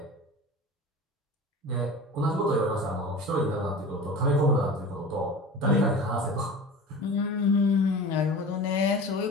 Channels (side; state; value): both; normal; correlation 0.36